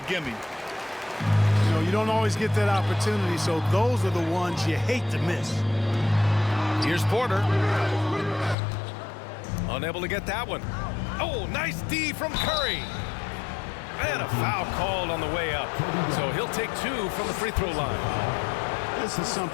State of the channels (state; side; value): drops out; right; at 8.6 s